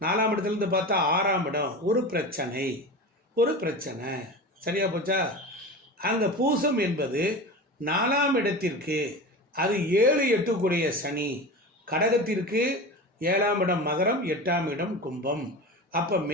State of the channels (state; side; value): normal; both; correlation 0.29